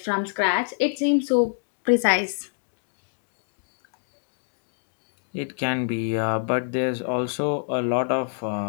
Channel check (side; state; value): right; silent; digital silence